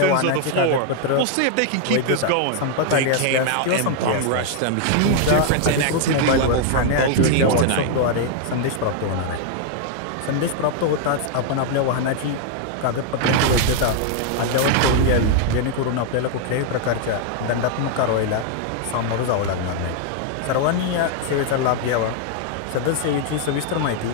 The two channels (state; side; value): different; both; correlation 0.00